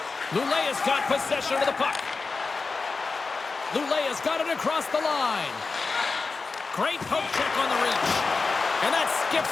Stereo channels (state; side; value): quieter; right; 4.2 dB